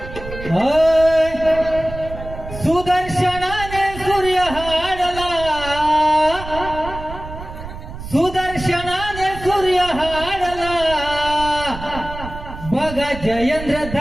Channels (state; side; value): noise; right; rumble, 11 dB below the sound